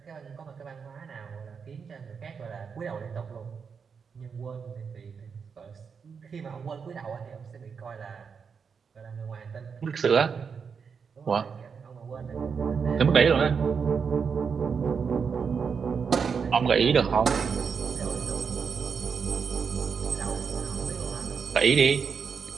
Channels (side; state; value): left; quieter; 6.1 dB